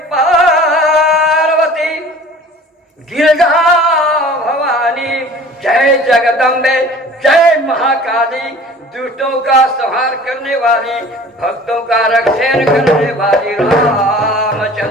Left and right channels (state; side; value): normal; both; correlation 0.46